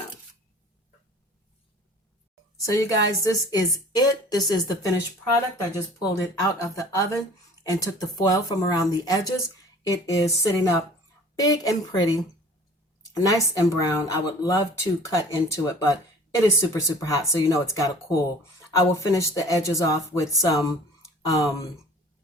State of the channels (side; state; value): both; normal; correlation 0.47